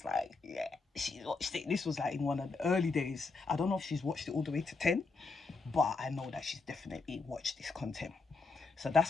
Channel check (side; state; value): right; quieter; 4.1 dB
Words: like, yeah, she watched it. This was like in one of the early days. I don't know if she's watched it all the way to 10, but I know that she's definitely watched this content. So